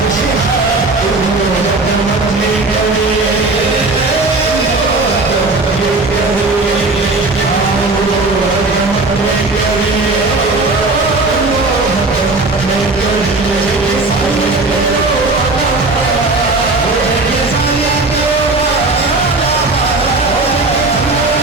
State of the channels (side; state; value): left; quieter; 3.2 dB